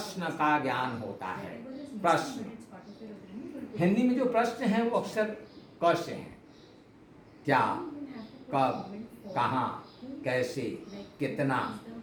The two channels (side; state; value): both; identical; correlation 1.00